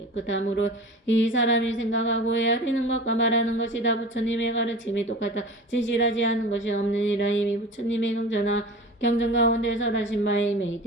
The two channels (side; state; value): both; normal; correlation 0.36